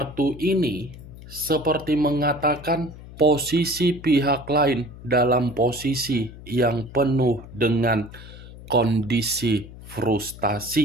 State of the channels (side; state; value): left; noise; hum, 16 dB below the sound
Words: ini seperti mengatakan posisi pihak lain dalam posisi yang penuh dengan kondisi